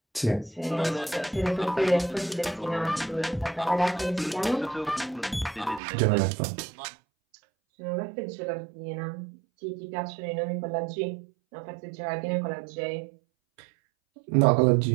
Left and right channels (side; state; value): left; drops out; at 5.8 s